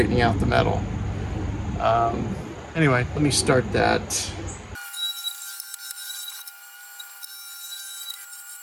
out the metal. Anyway, let me start that.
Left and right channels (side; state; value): both; identical; correlation 1.00